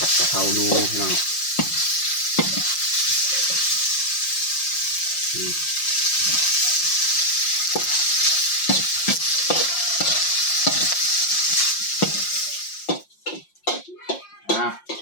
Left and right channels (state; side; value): late; right; 5.7 ms